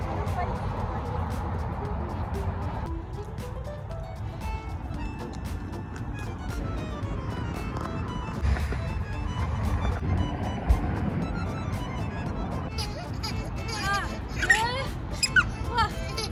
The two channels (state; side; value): identical; both; correlation 1.00